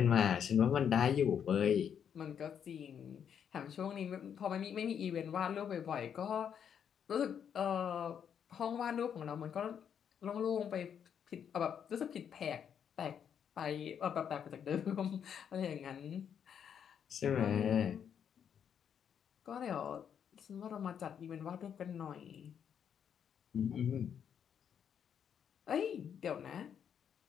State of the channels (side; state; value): right; quieter; 8.2 dB